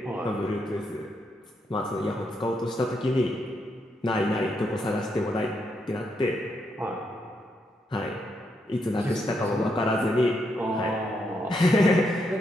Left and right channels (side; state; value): both; normal; correlation 0.79